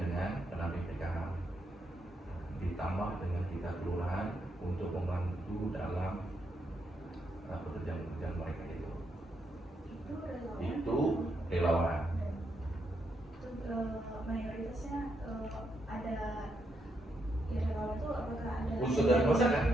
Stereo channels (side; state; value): both; normal; correlation 0.80